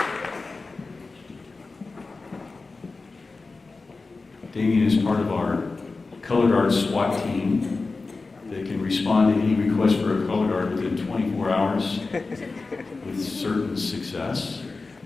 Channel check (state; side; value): quieter; right; 3.8 dB